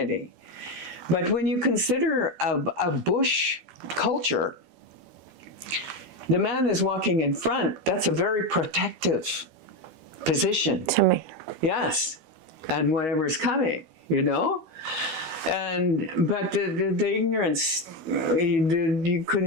But when you consider a bush culture, the man is walking in front. That's a very protective position. To me. Yes, and whatever's coming, you know. But the ignorance, you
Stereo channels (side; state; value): left; late; 13 ms